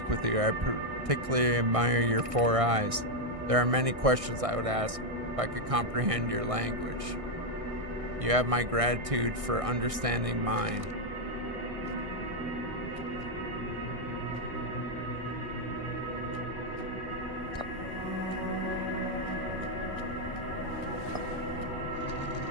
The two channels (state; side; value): late; left; 1.6 ms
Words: with you. I particularly admire your 4 eyes. There are many questions I would ask if I could comprehend your language. You have my gratitude for understanding mine.